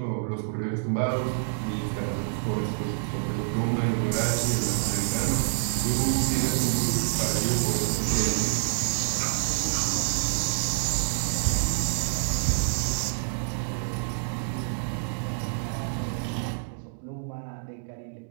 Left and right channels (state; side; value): silent; left; digital silence